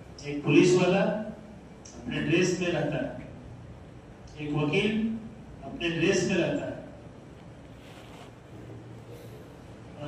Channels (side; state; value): both; identical; correlation 1.00